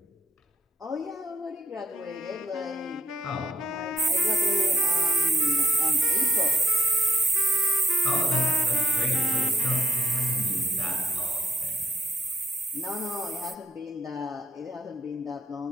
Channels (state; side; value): normal; both; correlation 0.75